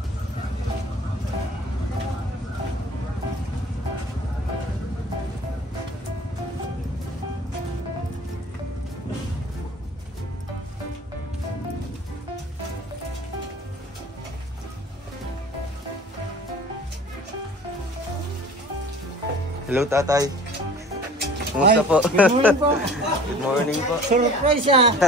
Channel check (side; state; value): both; normal; correlation 0.45